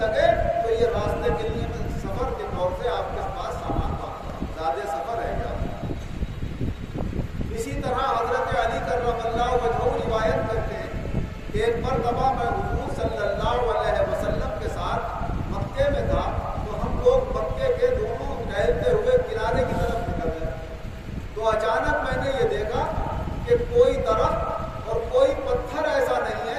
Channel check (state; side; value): identical; both; correlation 1.00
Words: لگے تو یہ راستے کے لیے سفر کے طور سے آپ کے پاس سامان زیادہ سفر ہے کیا. اسی طرح حضرت علی کرم اللہ وجہہ روایت کرتے ہیں کہ ایک مرتبہ میں حضور صلی اللہ علیہ وسلم کے ساتھ مکے میں تھا تو ہم لوگ مکے کے دونوں ٹہلتے ہوئے کنارے کی طرف نکل گئے. تو اچانک میں نے یہ دیکھا کہ کوئی درخت اور کوئی پتھر ایسا نہیں